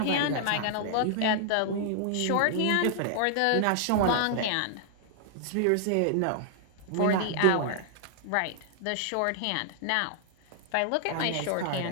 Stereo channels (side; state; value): both; different; correlation 0.00